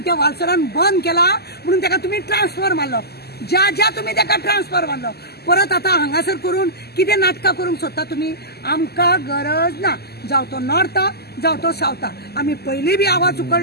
त्या वाल्सनान बंद केला म्हणून तेका तुमी ट्रान्सफर मारलो ज्या तुमी तेका ट्रान्सफर मारलो परत आता हांगासर करून कितें नाटकां करूंक सोदता तुमी. आमकां गरज ना जावं तो नॉर्थाक जावं तो सावथाक. आमी पयलीं बी आवाज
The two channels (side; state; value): right; late; 0.46 ms